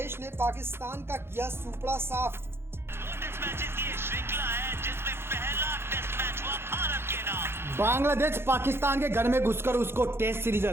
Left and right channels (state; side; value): late; left; 0.12 ms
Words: ने पाकिस्तान का किया सुपड़ा साफ। टेस्ट मैचेस की ये श्रृंखला है जिसमें पहला टेस्ट मैच हुआ भारत के नाम। बांग्लादेश पाकिस्तान के घर में घुसकर उसको टेस्ट सीरीज